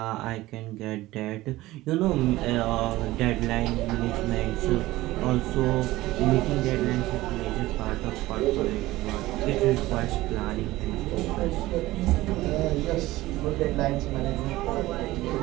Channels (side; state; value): left; quieter; 17.6 dB